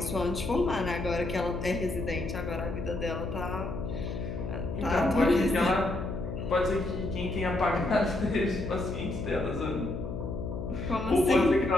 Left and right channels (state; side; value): noise; left; hum, 5 dB below the sound